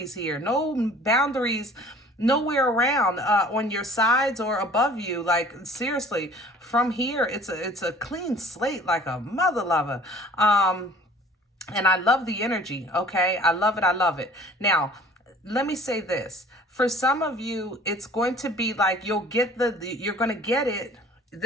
here. No boundaries nowhere around on your sides or above you. Like, seriously, from here, it's a clean slate, like a mother lover. And I love the energy. Okay. I love it. I love it. Now, let me say this. For some of you, it's going to be like, you'll get you're going to get it,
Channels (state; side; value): normal; both; correlation 0.50